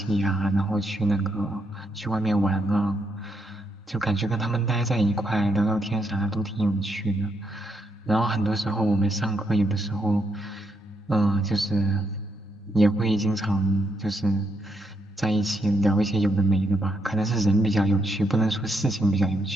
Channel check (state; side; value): normal; both; correlation 0.78